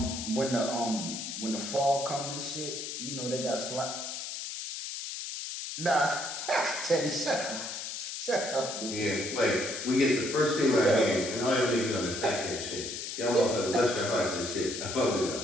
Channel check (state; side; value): noise; left; hiss, 6 dB below the sound